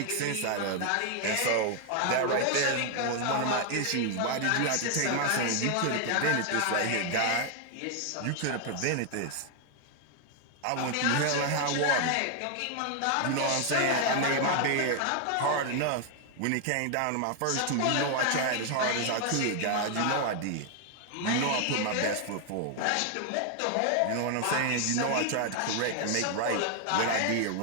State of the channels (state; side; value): different; both; correlation 0.00